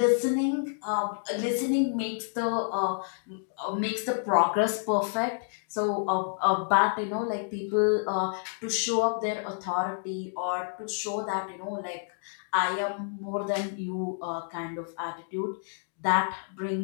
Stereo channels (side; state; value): right; silent; digital silence